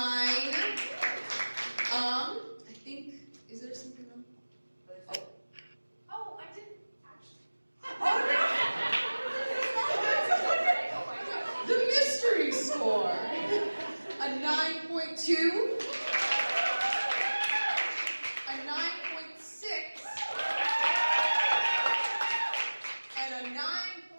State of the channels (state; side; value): inverted; both; correlation -1.00